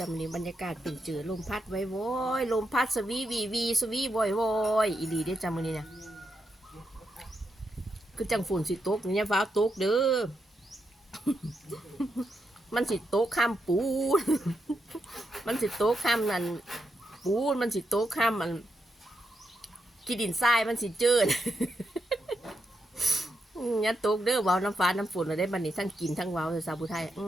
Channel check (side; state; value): both; normal; correlation 0.83